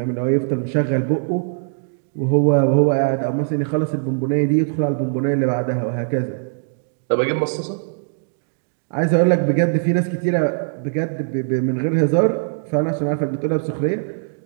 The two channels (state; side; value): silent; left; digital silence